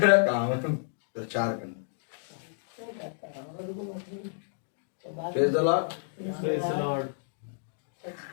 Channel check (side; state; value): right; silent; digital silence